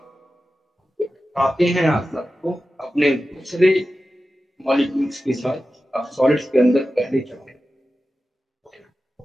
आते हैं आप सबको अपने दूसरे मॉलिक्यूल्स के साथ, आप सॉलिड्स के अंदर पहले चलते हैं।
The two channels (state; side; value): normal; both; correlation 0.93